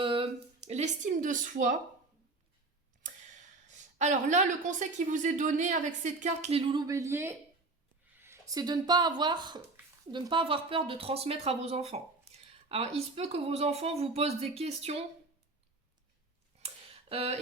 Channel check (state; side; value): quieter; left; 3.4 dB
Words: l'estime de soi. Alors là, le conseil qui vous est donné avec cette carte, les loulous béliers, c'est de ne pas avoir peur de transmettre à vos enfants. Alors, il se peut que vos enfants vous posent des questions